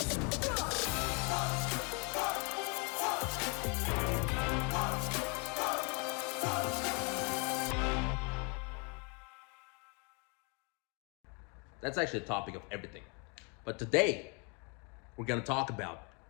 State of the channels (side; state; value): right; quieter; 34.0 dB